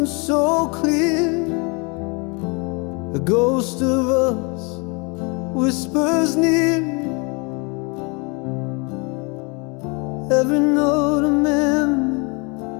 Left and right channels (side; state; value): right; quieter; 31.2 dB